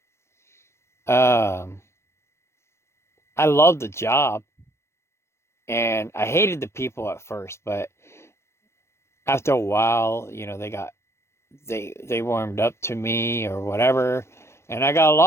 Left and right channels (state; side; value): late; right; 0.13 ms